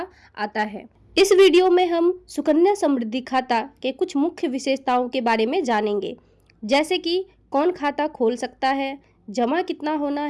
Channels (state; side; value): identical; both; correlation 1.00